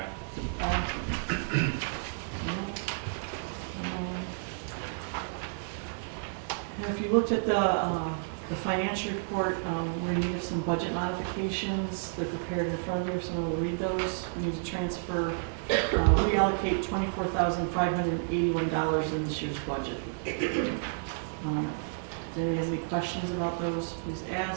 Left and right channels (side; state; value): left; silent; digital silence